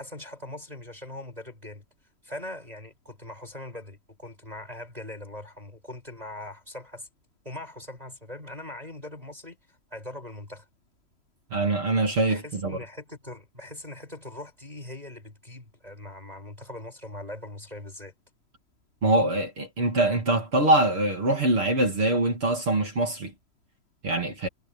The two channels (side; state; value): left; late; 3.0 ms